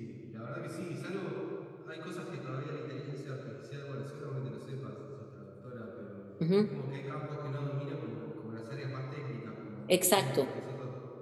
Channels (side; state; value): both; identical; correlation 1.00